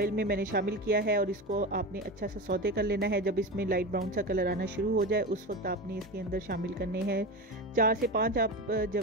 में मैंने शामिल किया है और इसको आपने अच्छा सा सौते कर लेना है। जब इसमें लाइट ब्राउन सा कलर आना शुरू हो जाए उस वक्त आपने इसके अंदर शामिल करने हैं 4 से 5 आप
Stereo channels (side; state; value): both; normal; correlation 0.24